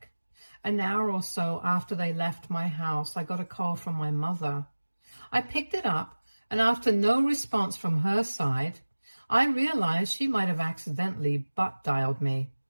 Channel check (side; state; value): both; inverted; correlation -1.00